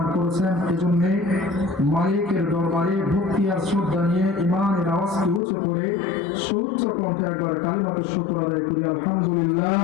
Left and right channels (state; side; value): drops out; right; at 5.4 s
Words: করেছেন। এজন্য মালিকের দরবারে ভক্তি আর শ্রদ্ধা নিয়ে ইমানের আওয়াজকে উঁচু করে সুউচ্চ কণ্ঠে একবার কালিমাতুশ শুকর আদায় করি, আলহামদুলিল্লাহ।